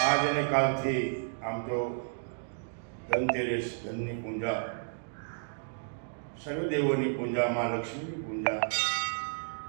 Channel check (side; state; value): left; silent; digital silence